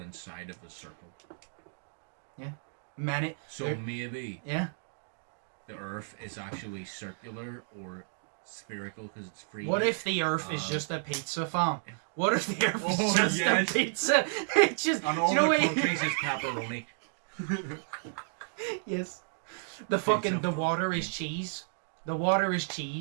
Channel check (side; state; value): left; silent; digital silence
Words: inside of a circle. Yeah. Maybe. Yeah. The Earth is actually circular or spherical because it's free. What if the Earth is just a pizza farm? What if the Earth is just a pizza? It's just. And all the countries is pepperoni. Yes. The water is cheese. The water is